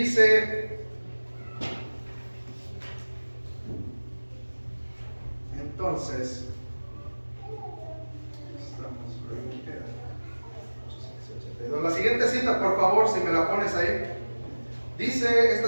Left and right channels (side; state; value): both; inverted; correlation -1.00